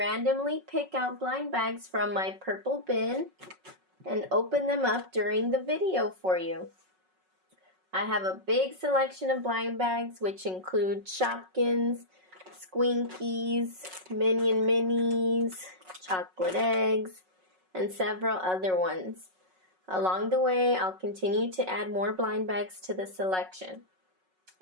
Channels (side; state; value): left; late; 5.4 ms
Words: pick out blind bags from my purple bin and open them up during the video for you. I have a big selection of blind bags which include Shopkins, Squinkies, Minion Minis, chocolate eggs, and several other ones. Along the way, I'll continue to add more blind bags to the selection.